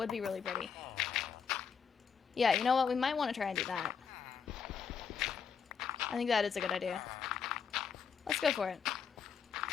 be really pretty. Yeah, you know what? We might want to try and do that. I think that is a good idea. Let's go for it.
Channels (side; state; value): right; quieter; 6.5 dB